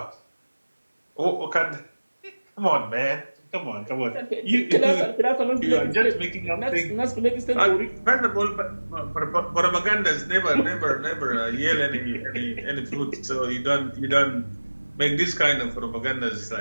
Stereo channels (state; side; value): inverted; both; correlation -1.00